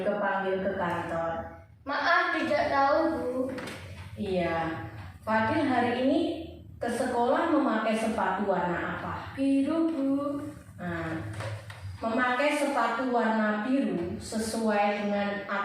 panggil ke kantor? Maaf tidak tahu Bu. Iya, Fadil hari ini ke sekolah memakai sepatu warna apa? Biru Bu. Nah, memakai sepatu warna biru sesuai dengan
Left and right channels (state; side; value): identical; both; correlation 1.00